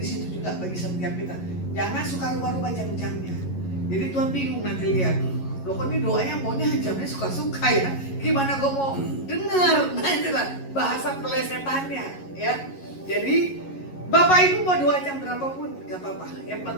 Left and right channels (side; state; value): right; late; 11 ms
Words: situ juga bagi setiap kita. Jangan suka rubah-rubah jam-jamnya. Jadi Tuhan bingung nanti lihat. Loh kok ini doanya maunya jamnya suka-suka ya. Gimana gue mau dengar? Nah itulah bahasa pelesetannya ya. Jadi Bapak Ibu mau doa jam berapapun gak apa-apa. Yang